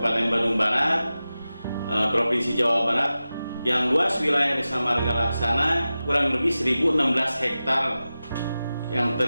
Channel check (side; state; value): both; inverted; correlation -0.94